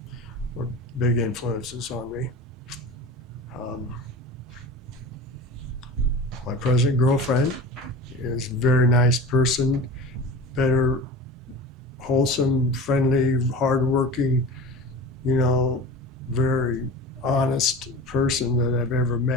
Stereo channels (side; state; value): both; normal; correlation 0.34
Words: were big influences on me. My present girlfriend is a very nice person, better, wholesome, friendly, hardworking, very honest person that I've ever